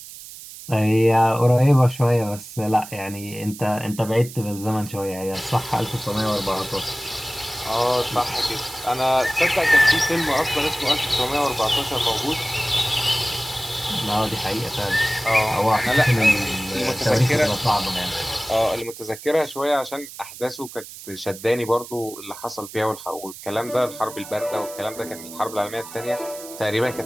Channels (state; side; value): noise; right; hiss, 14 dB below the sound